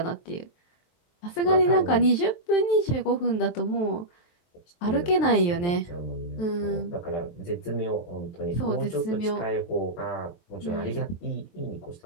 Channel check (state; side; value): late; right; 23 ms